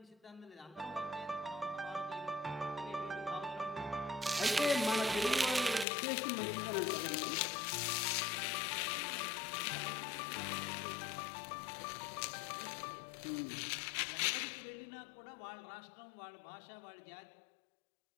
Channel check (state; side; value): drops out; right; at 5.9 s